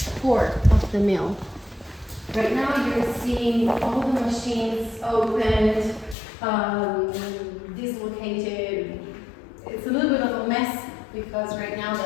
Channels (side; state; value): right; drops out; at 6.2 s